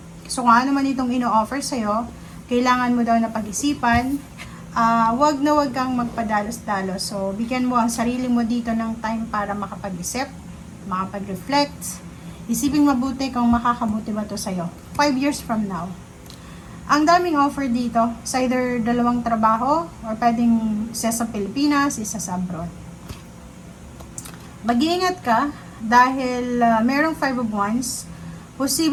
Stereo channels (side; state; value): both; identical; correlation 1.00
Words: So kung ano man itong ino-offer sa'yo, kailangan mo daw na pag-isipan. Wag na wag kang magpadalos-dalos. So bigyan mo ang sarili mo dito ng time para makapag-isip, makapag-reflect. Isipin mabuti kung makakabuti ba to sa'yo 5 years from now. Ang daming offer dito, sa either dalawang trabaho or pwedeng isa sa Pilipinas, isa sa abroad. Mag-iingat ka dahil merong 5 of Wands,